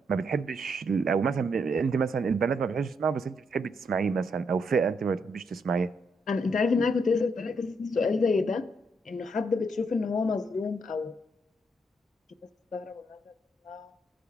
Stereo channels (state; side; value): normal; both; correlation 0.77